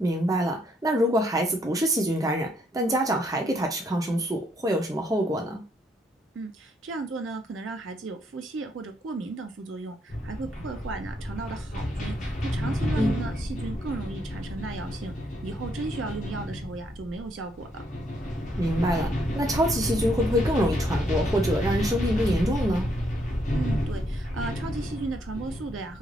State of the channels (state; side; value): normal; both; correlation 0.73